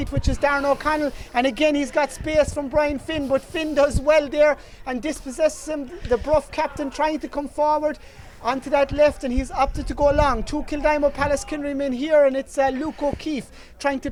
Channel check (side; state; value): both; identical; correlation 1.00